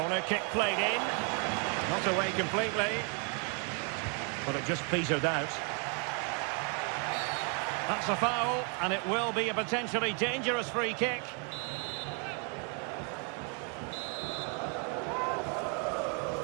kick played in. Not away completely. But it just petered out. That's a foul, and it will be a potentially dangerous free kick.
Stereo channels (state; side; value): quieter; left; 37.5 dB